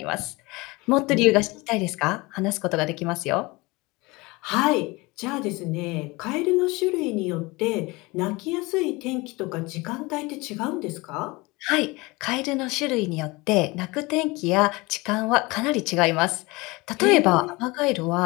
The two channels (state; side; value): quieter; right; 23.6 dB